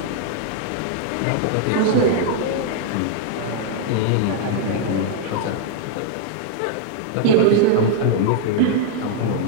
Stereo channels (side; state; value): both; different; correlation 0.00